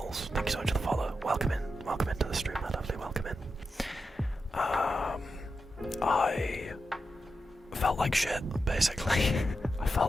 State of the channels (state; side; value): normal; both; correlation 0.88